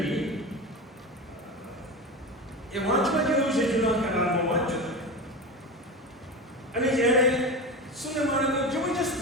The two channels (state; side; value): normal; both; correlation 0.25